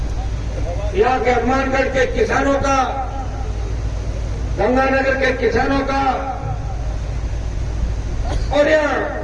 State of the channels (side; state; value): both; identical; correlation 1.00